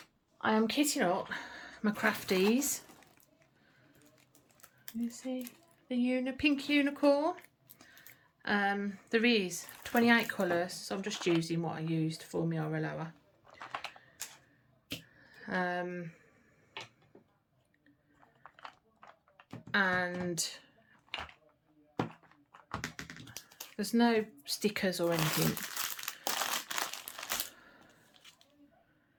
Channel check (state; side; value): identical; both; correlation 1.00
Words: I am kitting up my crafties. You see the pink unicorn? There is 28 colours, so I'm just using what I used for my Oraloa. And there's no stickers or anything.